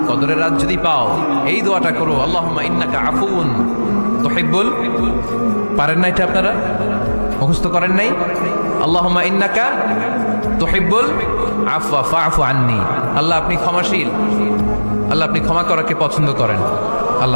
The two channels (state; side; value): inverted; both; correlation -1.00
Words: কদরের রাত যদি পাও এই দোয়াটা করো, আল্লাহুম্মা ইন্নাকা আফুন তুহিব্বুল। পারেন না এটা আপনারা? মুখস্থ করেন নাই? আল্লাহুম্মা ইন্নাকা তুহিব্বুল আফওয়া ফাআফু আন্নি। আল্লাহ আপনি ক্ষমাশীল, আল্লাহ আপনি ক্ষমা করাকে পছন্দ করেন,